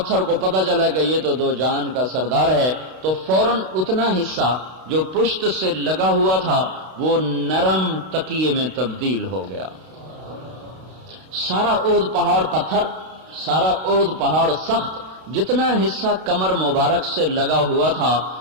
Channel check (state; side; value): late; left; 32 ms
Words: کو پتہ چلا کہ یہ تو دو جہان کا سردار ہے، تو فوراً اتنا حصہ جو پشت سے لگا ہوا تھا وہ نرم تکیے میں تبدیل ہو گیا۔ سارا اود پہاڑ پتھر، سارا اود پہاڑ سخت، جتنا حصہ کمر مبارک سے لگا ہوا تھا